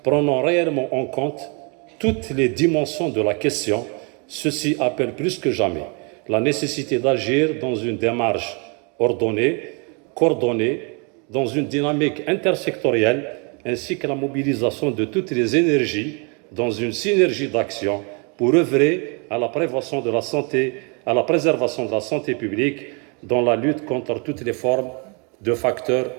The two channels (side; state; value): left; quieter; 34.2 dB